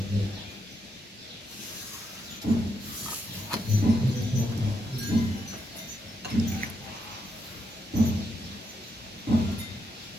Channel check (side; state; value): both; normal; correlation 0.81